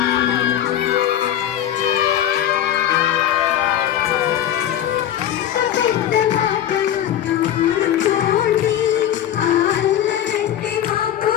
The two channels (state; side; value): quieter; right; 10.9 dB